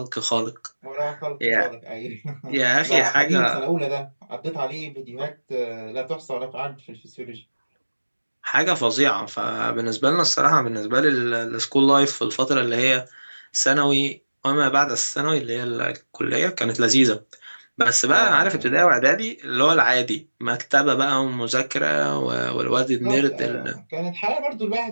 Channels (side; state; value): both; inverted; correlation -1.00